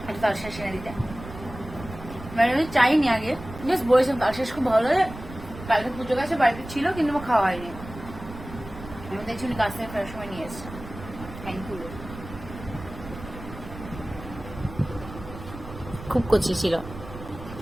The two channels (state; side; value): noise; right; rumble, 13 dB below the sound